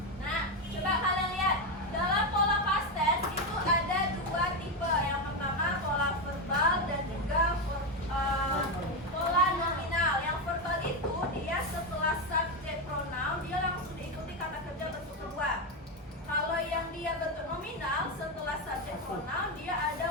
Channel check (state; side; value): normal; both; correlation 0.10